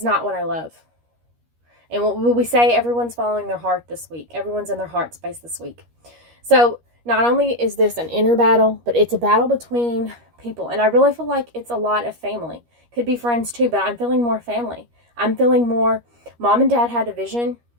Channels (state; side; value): late; left; 13 ms